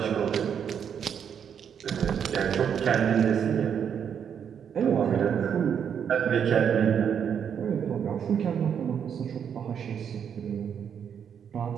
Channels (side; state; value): left; quieter; 7.9 dB